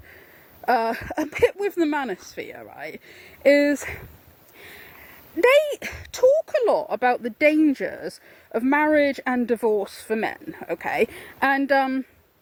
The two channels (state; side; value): identical; both; correlation 1.00